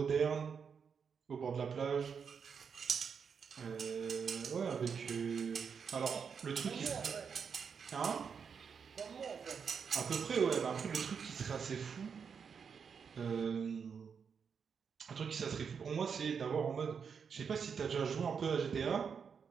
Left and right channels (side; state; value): left; quieter; 6.4 dB